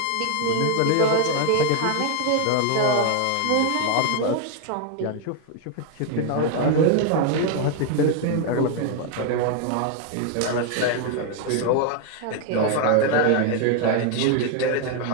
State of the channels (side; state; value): both; different; correlation 0.00